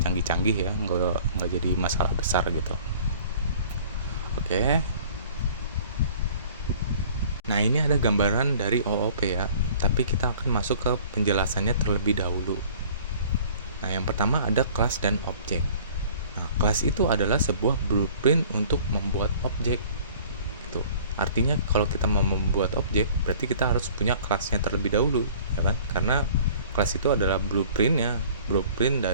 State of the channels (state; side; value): inverted; both; correlation -0.50